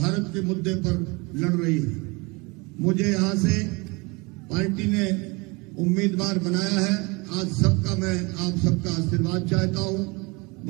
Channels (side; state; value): left; quieter; 27.1 dB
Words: के मुद्दे पर लड़ रही है। मुझे यहां से पार्टी ने उम्मीदवार बनाया है। आज सबका मैं आप सबका आशीर्वाद चाहता हूं,